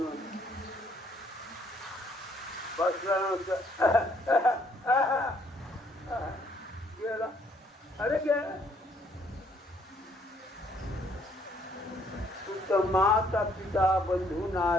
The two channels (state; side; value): normal; both; correlation 0.66